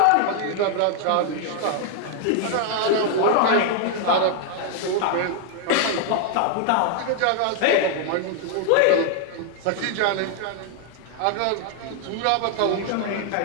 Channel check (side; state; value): both; different; correlation 0.00